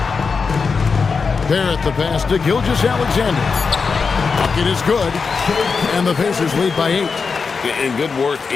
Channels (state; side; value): quieter; right; 5.1 dB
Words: Barrett the pass to Gilgeous-Alexander. Bucket is good. And the Pacers lead by 8. And good work